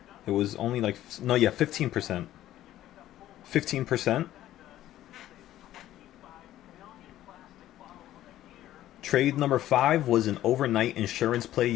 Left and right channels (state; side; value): quieter; right; 13.5 dB